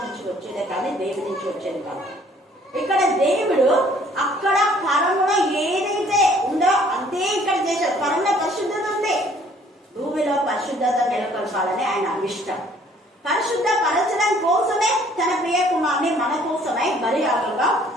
నుంచి వచ్చేదే కానీ దేవుడి నుంచి వచ్చేది కాదు. ఇక్కడ దేవుడు అక్కడ పరములో ఏదైతే ఉందో అంతే ఇక్కడ చేశాడు. పరంలో పరిశుద్ధత ఉంది, భూమిలో పరిశుద్ధత నెలకొల్పాలని ఆయన ఇష్టం. పరిశుద్ధపరచడం కోసమే తన ప్రియ కుమారుని మన కోసమై బలియాగంగా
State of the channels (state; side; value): normal; both; correlation 0.58